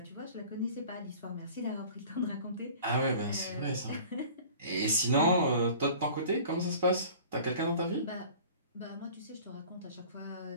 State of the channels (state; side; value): inverted; both; correlation -0.45